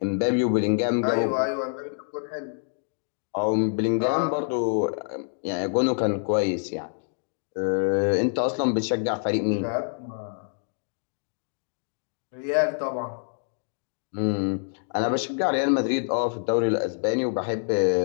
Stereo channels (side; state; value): right; silent; digital silence